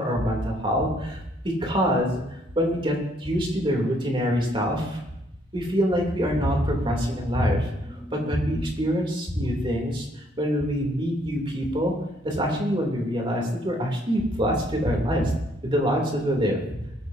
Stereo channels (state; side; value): normal; both; correlation 0.68